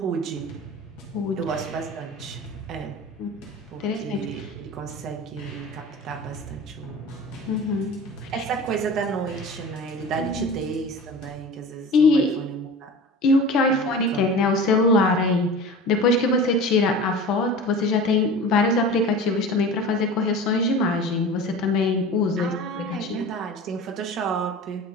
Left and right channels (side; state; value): both; normal; correlation 0.36